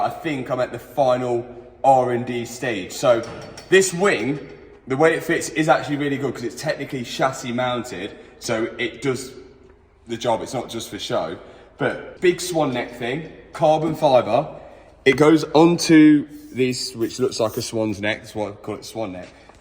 I think I'm at the final R&D stage. So this wing, the way it fits is actually really good because it's technically chassis mounted, so it does the job. It's not just for show. But big swan neck thing, carbon fibre. It goes onto this, which looks like a swan's neck. That's why I call it swan neck.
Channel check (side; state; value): both; identical; correlation 1.00